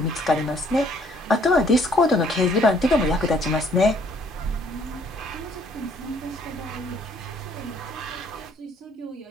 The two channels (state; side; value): normal; both; correlation 0.63